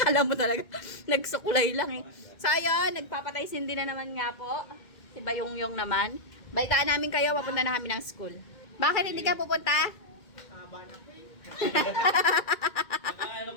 mo talaga, nagsukulay lang eh. So, ayun, nagpapatay sindi na naman nga po. Si Bayong-Yung naman. Balitaan namin kayo, papunta na kami ng school. Bakit hindi ka pupunta? Ano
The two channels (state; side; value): late; right; 2.2 ms